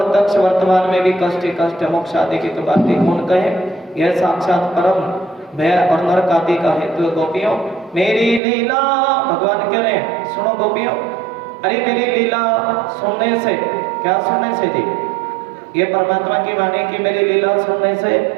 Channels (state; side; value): drops out; left; at 8.4 s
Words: वर्तमान में भी कष्ट ही कष्ट, मोक्ष आदि की तो बात ही कौन कहे। यह साक्षात परम भय और नरक आदि का हेतु। गोपियों मेरी लीला, भगवान कह रहे हैं, सुनो गोपियों, अरे मेरी लीला सुनने से, क्या सुनने से जी? ये परमात्मा की वाणी की मेरी लीला सुनने से